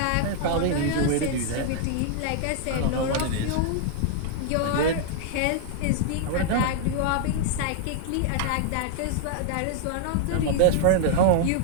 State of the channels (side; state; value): both; different; correlation -0.01